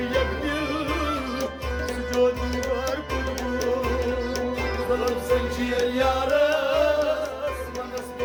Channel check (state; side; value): identical; both; correlation 1.00